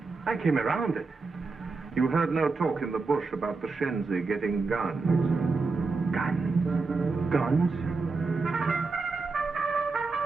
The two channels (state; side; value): quieter; left; 4.0 dB